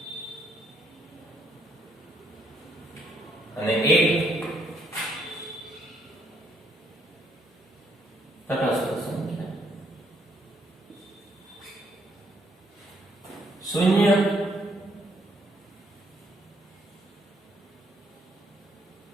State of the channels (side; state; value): both; normal; correlation 0.71